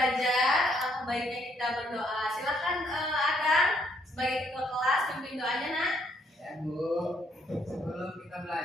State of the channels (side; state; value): both; normal; correlation 0.70